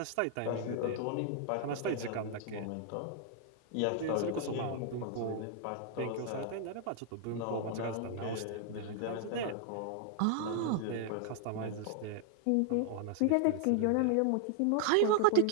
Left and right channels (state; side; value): different; both; correlation 0.00